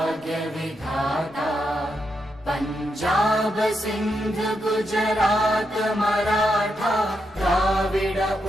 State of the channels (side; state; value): both; normal; correlation 0.83